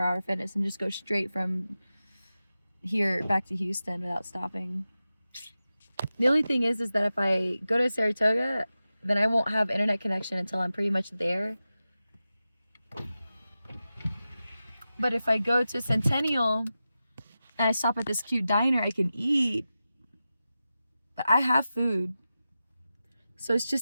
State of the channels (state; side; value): inverted; both; correlation -0.93